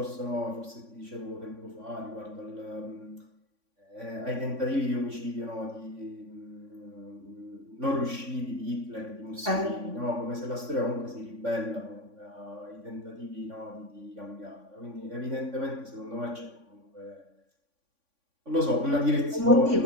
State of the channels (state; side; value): late; left; 3.5 ms